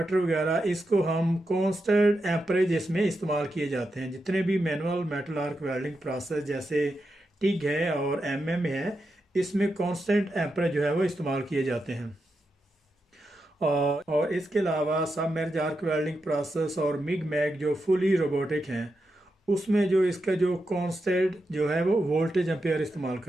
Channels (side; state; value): both; normal; correlation 0.87